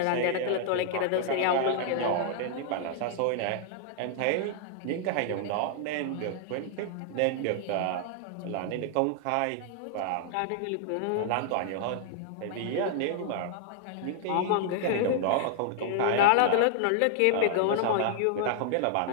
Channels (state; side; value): different; both; correlation -0.01